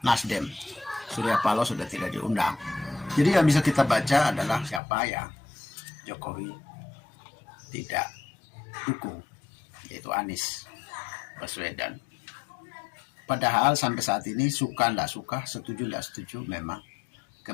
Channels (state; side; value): drops out; right; at 4.8 s